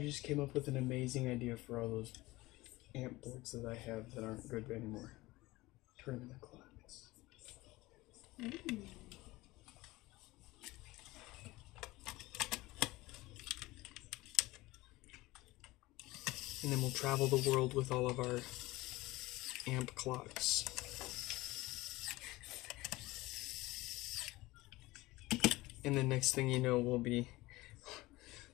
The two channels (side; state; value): right; quieter; 19.9 dB